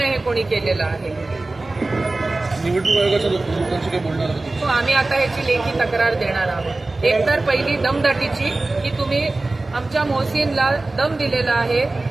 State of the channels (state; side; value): quieter; left; 3.1 dB